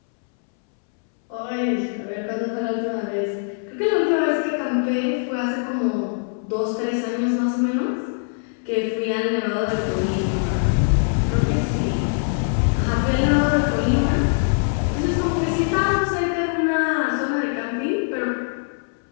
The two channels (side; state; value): right; silent; 64 dB below the other